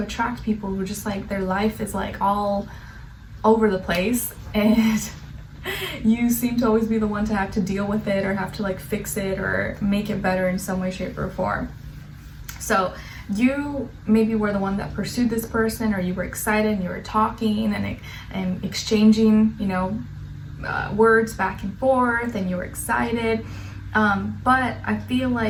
attract people who just like their life is like all over the place, and you seem to always be the one to have to deal with it, or have to like fix it or make it better in some way, shape, or form. So you maybe were the one that pursued this person, or you were excited and you were talking and exchanging, you know, words back and forth, and you were excited. But I feel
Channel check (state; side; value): identical; both; correlation 1.00